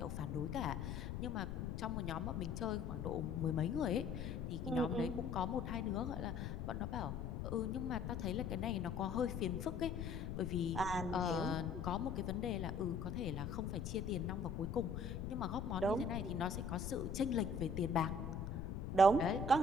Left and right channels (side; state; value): left; noise; rumble, 4 dB below the sound